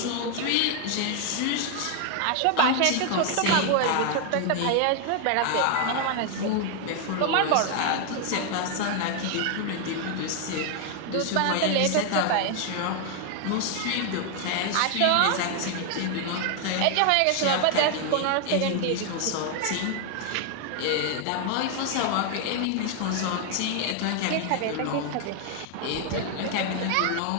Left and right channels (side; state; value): both; different; correlation 0.00